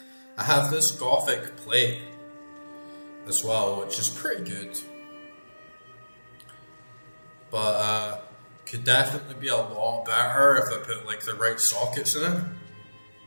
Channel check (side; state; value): both; inverted; correlation -1.00